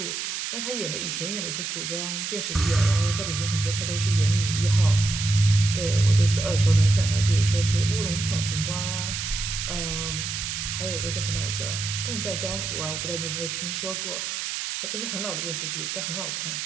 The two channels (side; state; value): right; noise; hiss, 4 dB below the sound